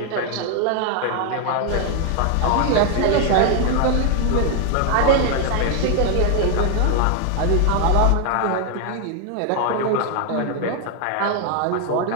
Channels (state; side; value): different; both; correlation 0.00